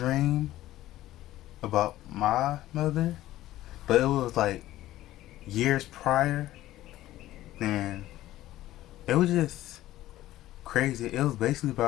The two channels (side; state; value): right; quieter; 14.9 dB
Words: about my mother, but it was like years prior. And it was just crazy. It was basically